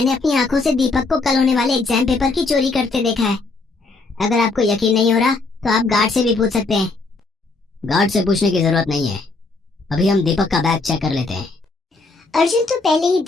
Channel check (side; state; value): right; quieter; 3.6 dB